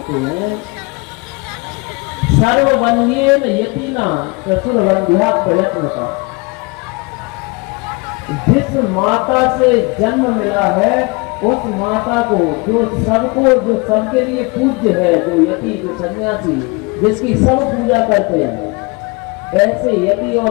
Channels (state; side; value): quieter; right; 28.1 dB